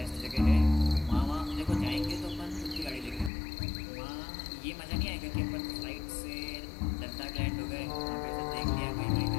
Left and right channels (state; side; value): drops out; right; at 3.3 s